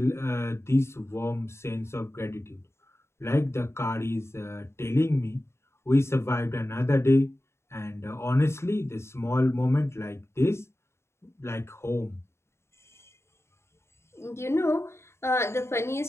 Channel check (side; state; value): right; late; 0.13 ms